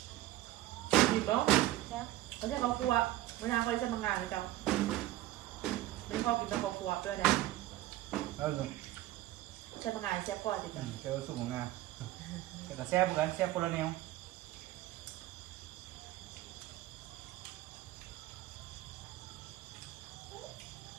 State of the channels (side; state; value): left; quieter; 15.5 dB